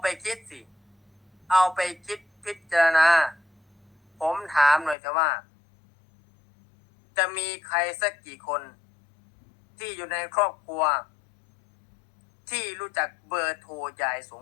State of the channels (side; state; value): right; drops out; at 5.0 s